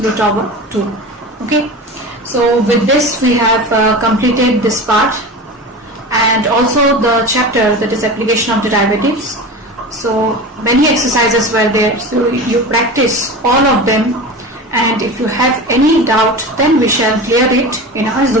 over 2. Okay. So with this we have completed this part and also the chapter, that is application of derivatives. So many exercises were there, so you practice all of them, and if you have any doubt then we shall clear it in our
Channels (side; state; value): both; normal; correlation 0.30